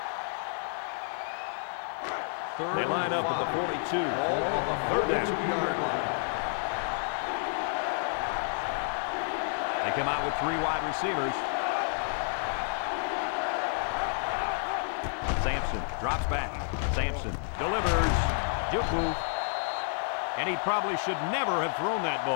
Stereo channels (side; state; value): right; silent; 58 dB below the other